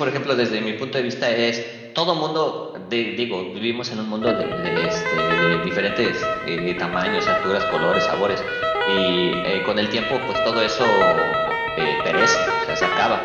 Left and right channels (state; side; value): identical; both; correlation 1.00